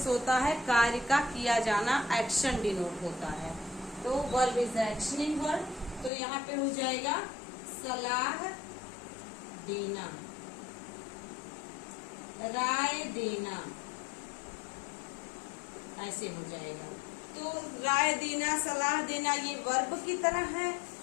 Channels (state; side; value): drops out; right; at 6.1 s